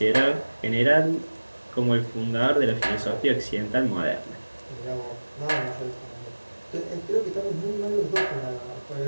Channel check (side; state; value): both; inverted; correlation -1.00